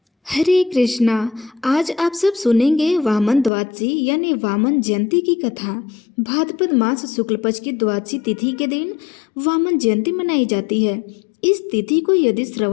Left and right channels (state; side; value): drops out; right; at 3.5 s